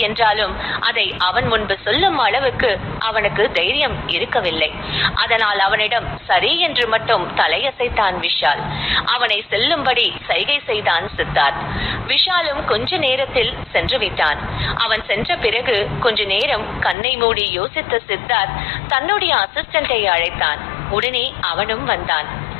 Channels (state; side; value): drops out; right; at 16.9 s